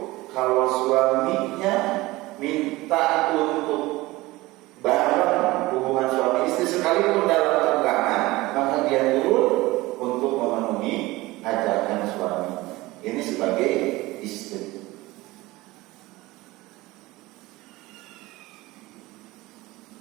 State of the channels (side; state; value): left; quieter; 19.9 dB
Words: kalau suaminya minta untuk bareng hubungan suami istri sekalipun dalam tenggangan, maka dia turun untuk memenuhi ajakan suami. Ini sebagai istri.